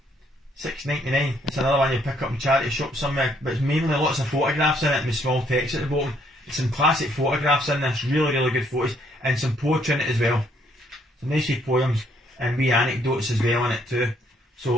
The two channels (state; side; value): normal; both; correlation 0.68